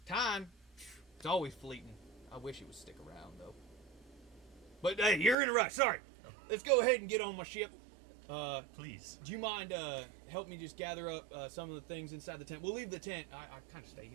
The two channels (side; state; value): left; drops out; at 5.4 s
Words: Time. It's always fleeting. I wish it would stick around, though. But, hey, you're in a rush. Sorry. Let's go ahead and get on my ship. Please. Do you mind help me just gather up some of the things inside the tent? We'll leave the tent. I kind of stay